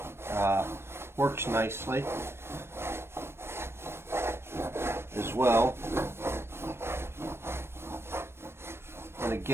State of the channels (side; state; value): left; late; 0.12 ms